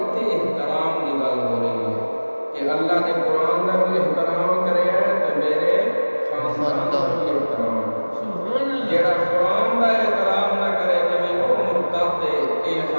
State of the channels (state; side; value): inverted; both; correlation -1.00